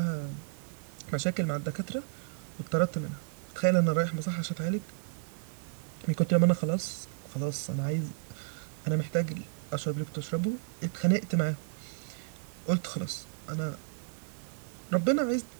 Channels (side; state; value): left; silent; 56 dB below the other